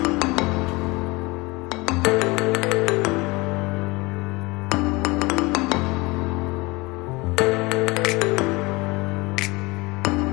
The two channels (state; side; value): quieter; right; 23.8 dB